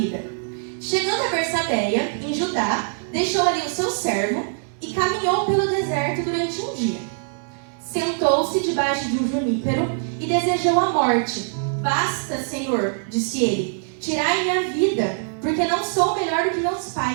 Chegando a Bersabeia, em Judá, deixou ali o seu servo e caminhou pelo deserto durante um dia. Sentou-se debaixo de um junípero e desejou a morte. Basta, Senhor, disse ele, tirai minha vida, porque não sou melhor do que meus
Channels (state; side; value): silent; left; digital silence